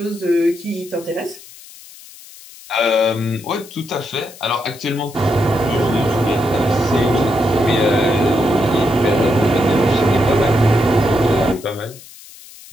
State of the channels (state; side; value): noise; left; hiss, 20 dB below the sound